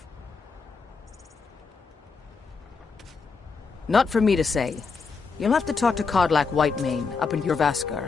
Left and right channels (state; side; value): quieter; right; 4.9 dB